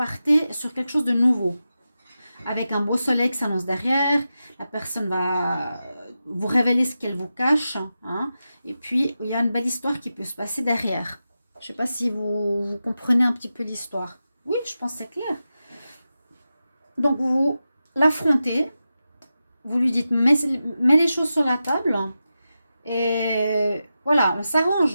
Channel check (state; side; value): inverted; both; correlation -0.91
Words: sur quelque chose de nouveau. Avec un beau soleil qui s'annonce derrière, la personne va vous révéler ce qu'elle vous cache. Hein, et puis, il y a une belle histoire qui peut se passer derrière. Je ne sais pas si vous comprenez un petit peu l'histoire. Oui, je pense que c'est clair. Donc, vous l'affrontez. Vous lui dites, mets les choses sur la table. Et voilà, on